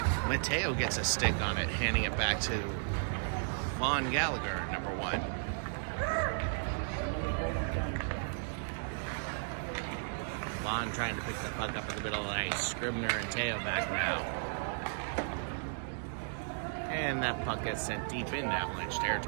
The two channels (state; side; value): silent; left; digital silence